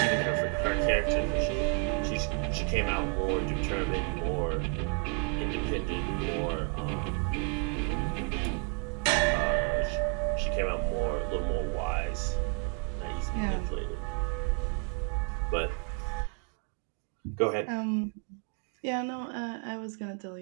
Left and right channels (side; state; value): left; quieter; 36.4 dB